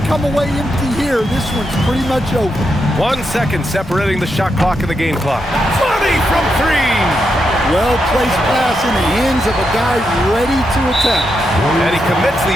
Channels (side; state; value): both; normal; correlation 0.83